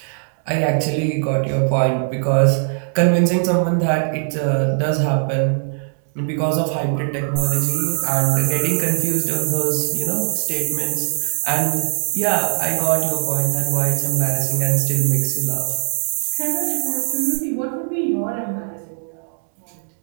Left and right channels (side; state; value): left; silent; digital silence